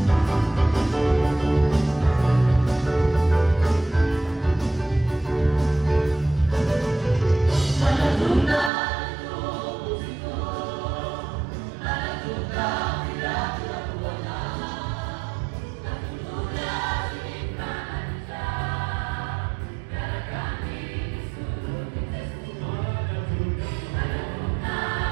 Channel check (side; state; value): left; drops out; at 8.7 s